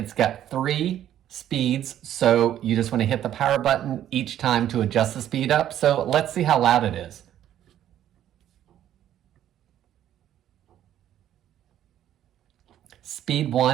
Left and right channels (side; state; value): left; quieter; 11.4 dB